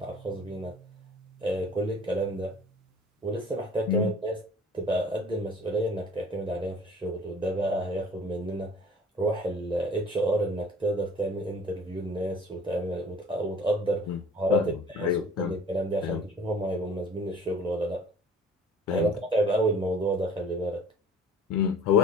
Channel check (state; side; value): normal; both; correlation 0.48